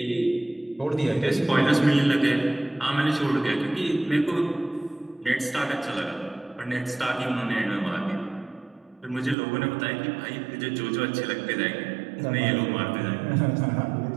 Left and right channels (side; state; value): left; drops out; at 9.3 s